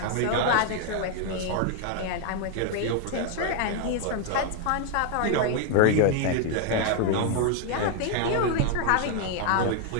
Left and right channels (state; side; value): different; both; correlation 0.00